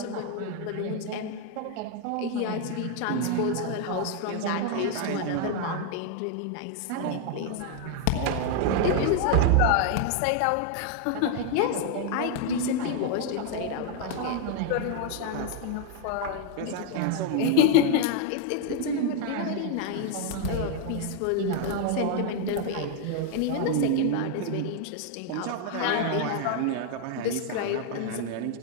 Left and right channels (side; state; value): both; different; correlation 0.00